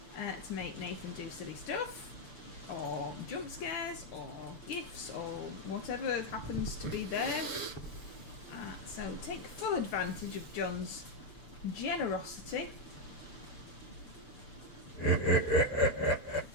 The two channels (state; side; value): late; right; 6.8 ms